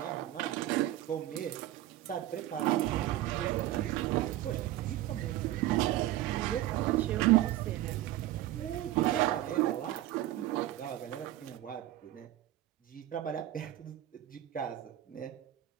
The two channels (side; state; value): left; quieter; 14.4 dB